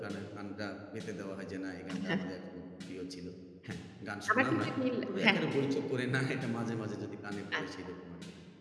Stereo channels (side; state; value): both; identical; correlation 1.00